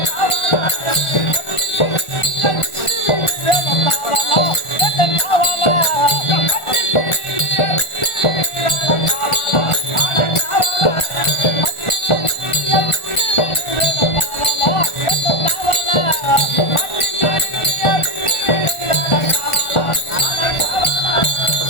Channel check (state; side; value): late; right; 1.4 ms